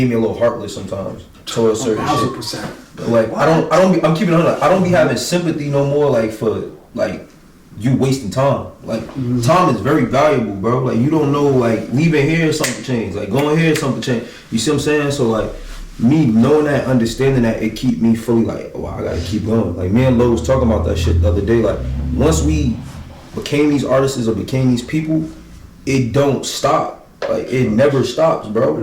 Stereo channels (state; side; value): identical; both; correlation 1.00